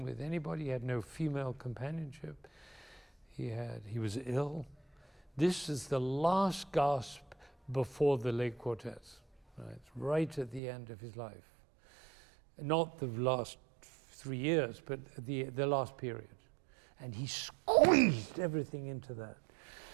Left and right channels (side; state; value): left; drops out; at 10.6 s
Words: with anybody, he had no female companionship. He was ill. This is the last gasp before the late quartets, right at the end of his life. Not the last 3 years, but the last period. And he squeezed everything into that.